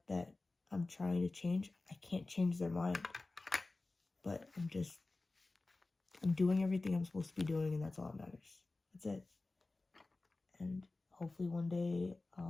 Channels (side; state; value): right; quieter; 3.3 dB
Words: that I'm trying to change, I can't change their mind. But I'm doing everything I'm supposed to be doing, and that's all that matters. That's it. And hopefully one day,